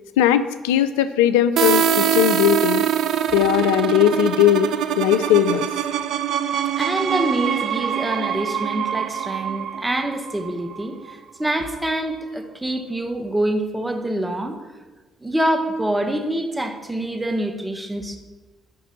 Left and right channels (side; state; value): both; normal; correlation 0.39